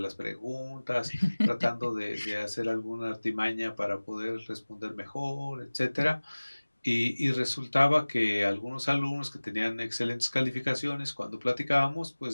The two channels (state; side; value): inverted; both; correlation -1.00